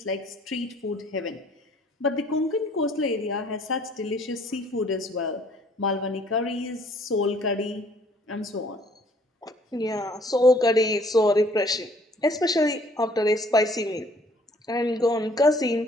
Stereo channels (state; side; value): normal; both; correlation 0.59